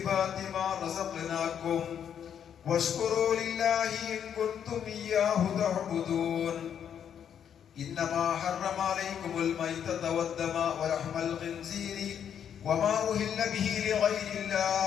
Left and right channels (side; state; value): right; quieter; 8.6 dB